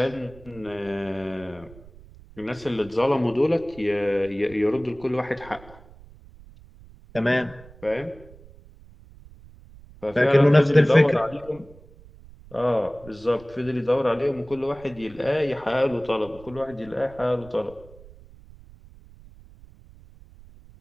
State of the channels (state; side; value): noise; right; rumble, 22 dB below the sound